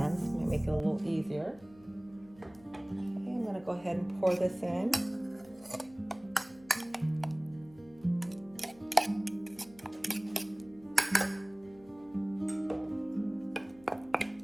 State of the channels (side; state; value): left; noise; hum, 25 dB below the sound